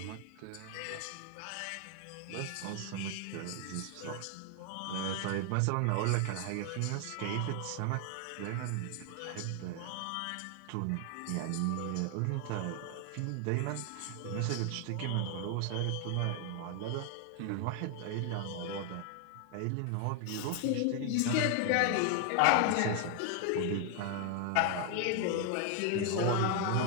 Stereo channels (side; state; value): both; different; correlation 0.00